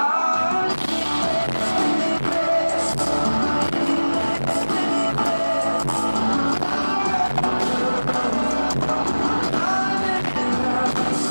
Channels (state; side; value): inverted; both; correlation -1.00